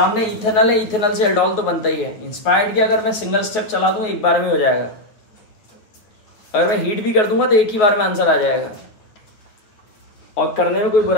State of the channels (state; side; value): late; right; 9.1 ms